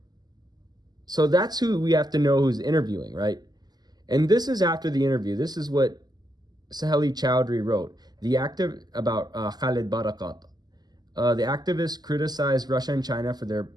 So that's who we have to know who's interviewing, right? And this is after the interview. This is what Saheli Chowdhury wrote. The active about Khalid Barakat. The activists criticized Russia and China for their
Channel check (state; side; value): late; left; 0.20 ms